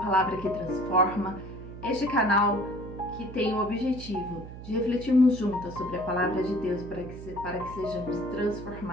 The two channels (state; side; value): noise; right; hum, 12 dB below the sound